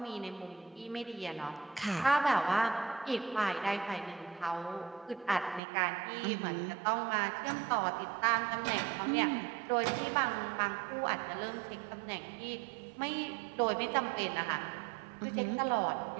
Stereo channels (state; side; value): drops out; left; at 5.6 s